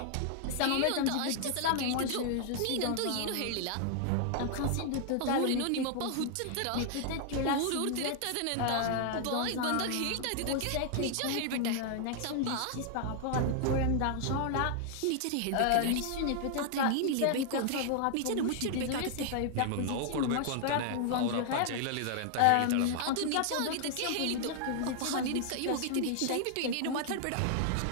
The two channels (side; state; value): both; different; correlation 0.00